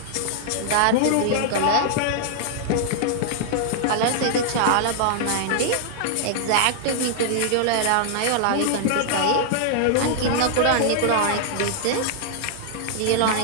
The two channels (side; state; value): both; different; correlation -0.01